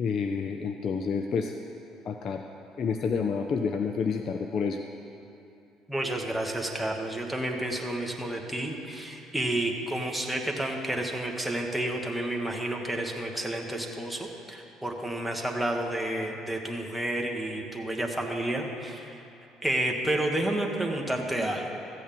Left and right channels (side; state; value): both; normal; correlation 0.77